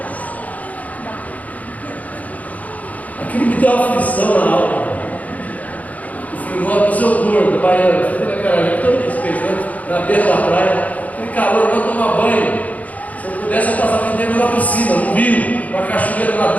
Aquilo me deu uma aflição na alma. Eu falei, seu gordo, baiano, você tem aquela gente, todo respeito, né? Na beira da praia, aquele calor, eu vou tomar banho. Se eu pudesse, eu passava dentro da piscina, no rio, com a cachoeira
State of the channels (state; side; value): late; right; 0.074 ms